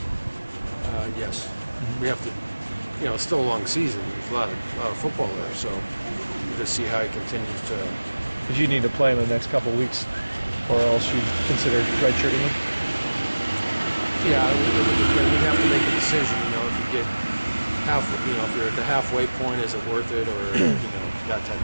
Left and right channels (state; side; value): inverted; both; correlation -1.00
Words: Yes. We have to, it's still a long season. There's a lot of football there, so we'll just see how he continues to. Because you need to play him in the next couple of weeks, or else you'd consider redshirting him? Yeah, we'd have to make a decision, if you get if you're at the halfway point, is it worth it, or, that type